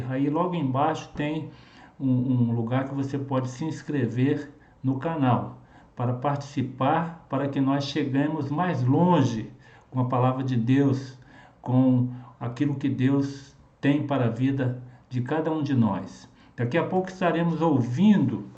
Aí logo embaixo tem um lugar que você pode se inscrever no canal, para participar, para que nós cheguemos mais longe com a palavra de Deus, com aquilo que Deus tem para a vida de cada um de nós. Daqui a pouco estaremos ouvindo,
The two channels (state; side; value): identical; both; correlation 1.00